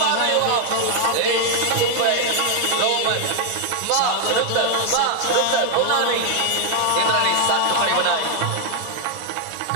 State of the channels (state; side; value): different; both; correlation 0.00